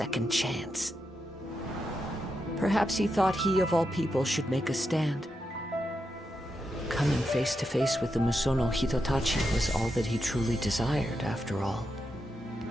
chance. Perhaps he thought he of all people should make a stand. Coming face to face with the Musono Hitotachi was all that he truly desired, after all.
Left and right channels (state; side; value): normal; both; correlation 0.86